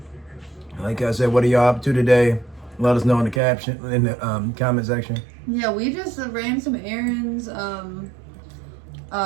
Like I said, what are y'all up to today? Let us know in the comment section. Yeah, we just ran some errands. You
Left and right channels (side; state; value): left; drops out; at 3.4 s